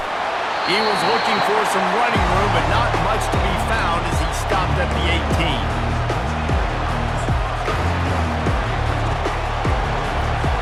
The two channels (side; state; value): both; identical; correlation 1.00